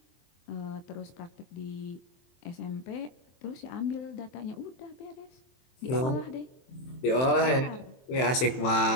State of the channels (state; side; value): late; right; 23 ms